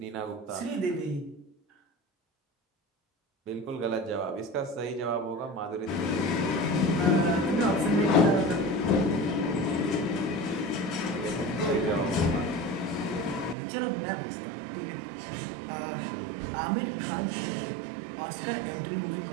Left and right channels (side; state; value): left; drops out; at 13.6 s